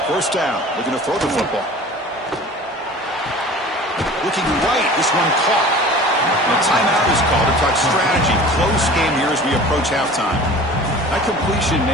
First down, looking to throw the football. Looking right, this one caught. And a timeout is called to talk strategy. Close game here as we approach halftime. That completion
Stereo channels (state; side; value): normal; both; correlation 0.42